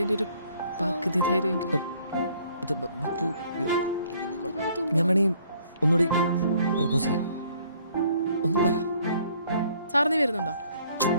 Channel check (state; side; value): inverted; both; correlation -0.62